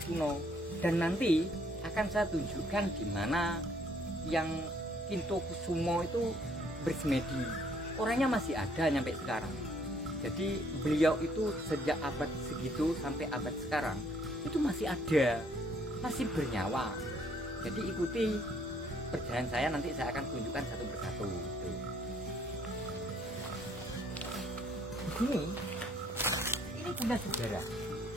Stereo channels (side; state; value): both; normal; correlation 0.65